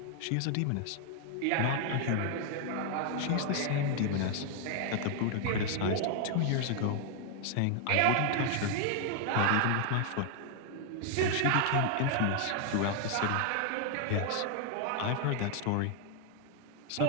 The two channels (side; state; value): both; different; correlation 0.00